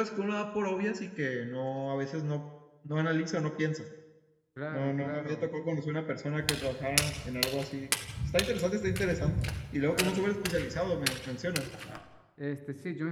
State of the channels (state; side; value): identical; both; correlation 1.00